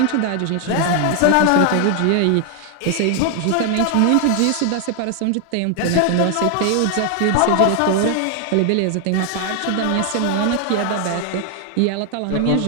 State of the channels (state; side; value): different; both; correlation 0.00